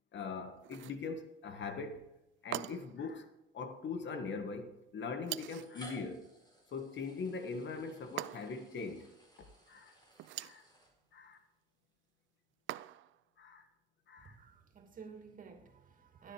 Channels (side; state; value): both; normal; correlation 0.25